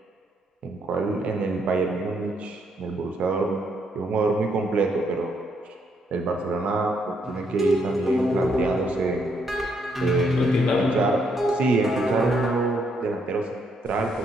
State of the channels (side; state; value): both; normal; correlation 0.74